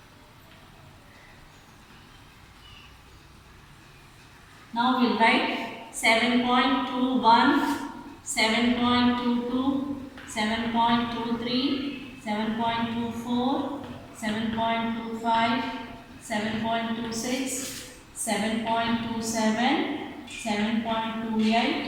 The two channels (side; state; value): both; identical; correlation 1.00